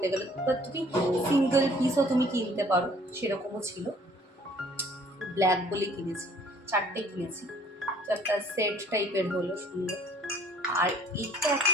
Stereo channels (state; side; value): normal; both; correlation 0.57